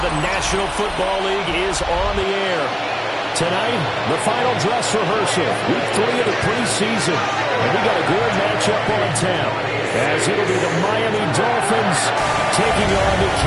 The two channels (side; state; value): both; identical; correlation 1.00